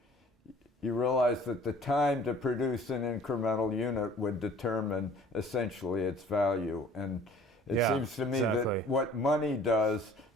you realize that the time to produce an incremental unit would determine essentially its value. And it seems to me that what money does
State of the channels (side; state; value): both; normal; correlation 0.52